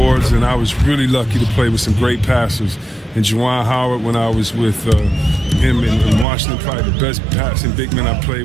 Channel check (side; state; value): left; drops out; at 6.2 s